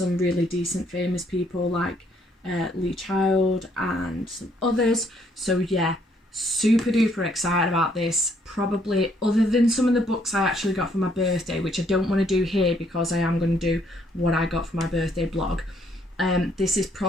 really decent famous people like Lee Child and some others. So yeah, super duper excited about this. Probably, other than some of the books I actually got for my birthday, which I don't want to do here because I am going to do what I got for my birthday blog. This is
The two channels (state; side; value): normal; both; correlation 0.68